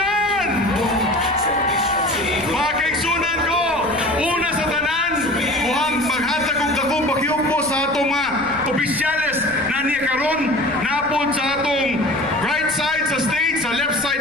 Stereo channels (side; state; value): left; noise; rumble, 22 dB below the sound